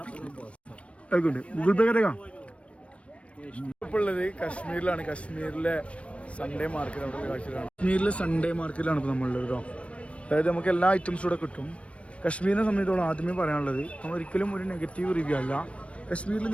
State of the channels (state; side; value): late; right; 0.062 ms